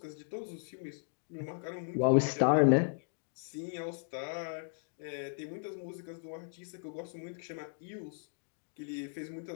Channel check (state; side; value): silent; right; digital silence